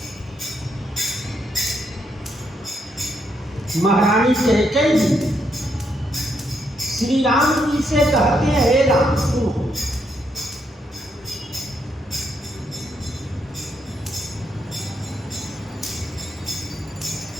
महारानी कैकेयी जी श्री राम जी से कहते हैं, हे राम सुनो,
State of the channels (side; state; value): both; normal; correlation 0.77